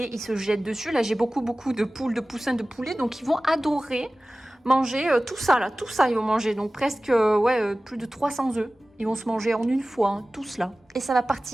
ils se jettent dessus. Là, j'ai beaucoup de poules, de poussins, de poulets, donc ils vont adorer manger tout ça, ils vont manger. Donc presque, plus de 300 œufs. Ils vont se manger en une fois, hein, tout cela. Et ça va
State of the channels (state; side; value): normal; both; correlation 0.97